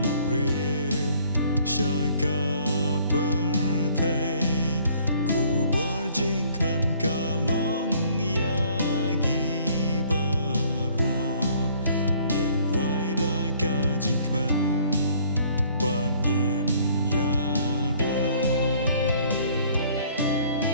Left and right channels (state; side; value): inverted; both; correlation -0.59